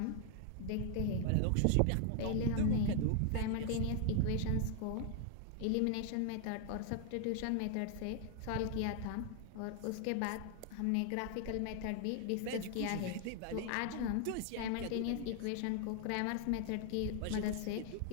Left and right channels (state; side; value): different; both; correlation 0.00